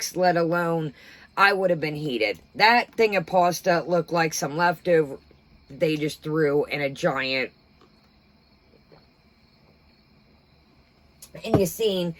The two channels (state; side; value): identical; both; correlation 1.00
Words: let alone, I would have been heated. That thing of pasta looked like some leftover they just threw in a giant. And you seen